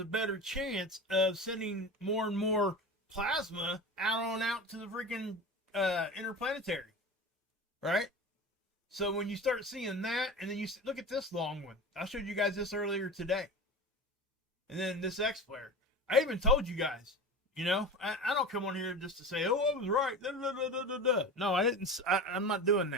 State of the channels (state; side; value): normal; both; correlation 0.30